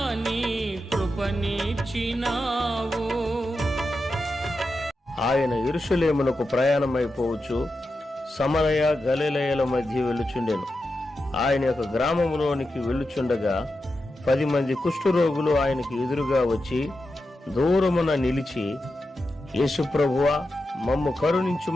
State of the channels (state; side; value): normal; both; correlation 0.89